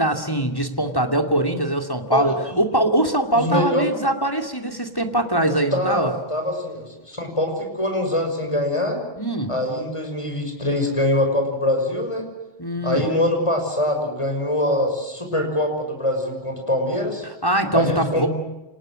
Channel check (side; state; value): right; late; 1.1 ms